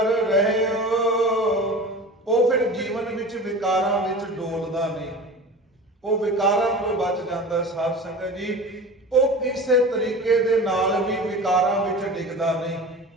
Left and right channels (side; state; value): both; normal; correlation 0.35